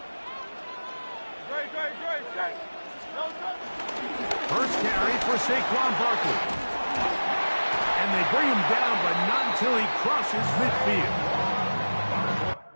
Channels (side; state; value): both; inverted; correlation -1.00